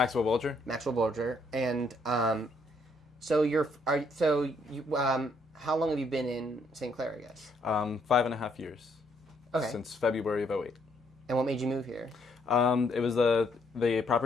Bulger. Maxwell Bulger, and how long have you been in St. Clair, I guess? 5.5 years. Okay. Since February of '08. And what made you move here? It was the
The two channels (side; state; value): both; normal; correlation 0.71